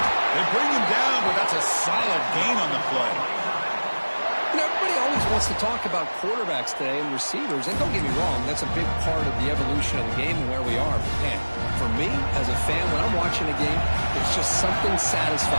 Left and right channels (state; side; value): inverted; both; correlation -1.00